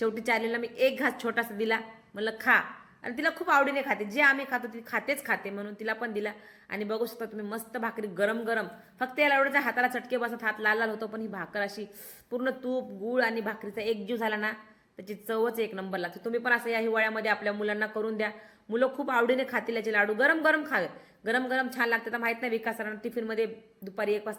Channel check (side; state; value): both; identical; correlation 1.00